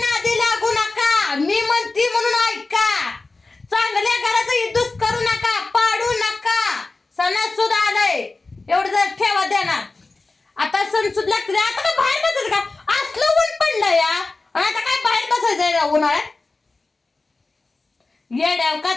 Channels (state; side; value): quieter; right; 3.5 dB